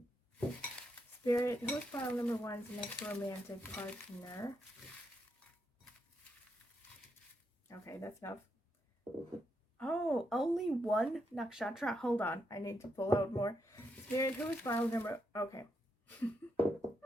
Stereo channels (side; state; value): both; normal; correlation 0.80